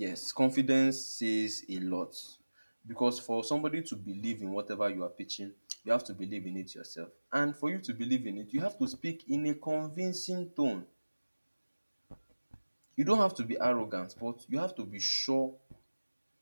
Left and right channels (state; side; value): inverted; both; correlation -1.00